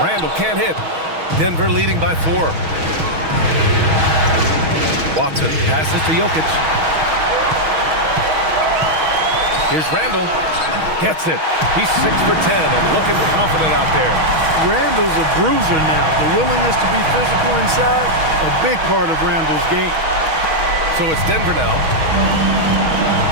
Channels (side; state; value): left; late; 6.3 ms